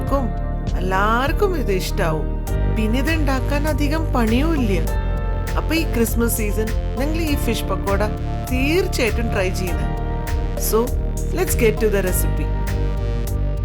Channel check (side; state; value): both; identical; correlation 1.00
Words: എല്ലാവർക്കും ഇത് ഇഷ്ടാവും. പിന്നെ ഇത് ഉണ്ടാക്കാൻ അധികം പണിയും ഇല്ല. അപ്പൊ ഈ ക്രിസ്മസ് സീസൺ നിങ്ങൾ ഈ ഫിഷ് പക്കോട തീർച്ചയായിട്ടും ട്രൈ ചെയ്യണം. So let's get to the recipe.